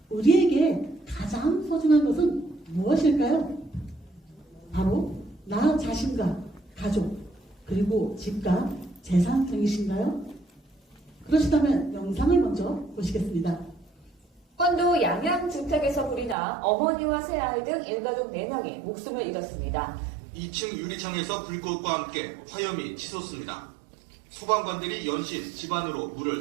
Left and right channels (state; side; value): drops out; left; at 16.4 s